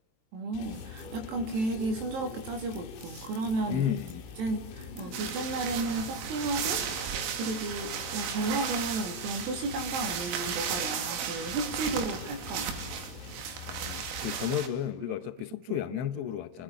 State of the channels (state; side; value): late; left; 23 ms